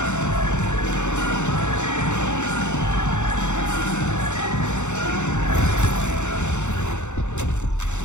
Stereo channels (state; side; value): late; right; 0.83 ms